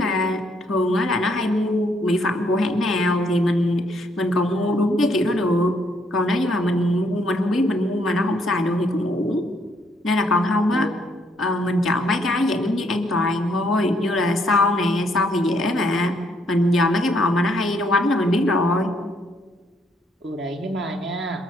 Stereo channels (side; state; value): both; normal; correlation 0.71